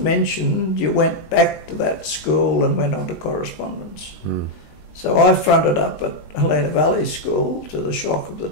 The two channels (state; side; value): late; right; 19 ms